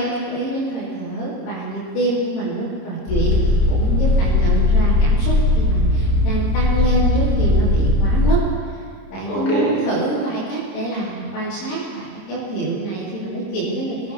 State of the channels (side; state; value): right; late; 30 ms